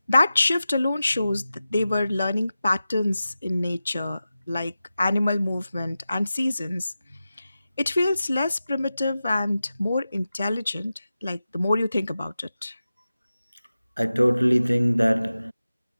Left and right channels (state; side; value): inverted; both; correlation -0.94